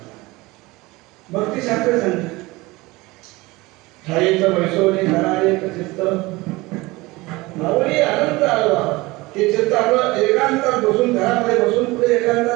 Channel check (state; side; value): quieter; left; 21.7 dB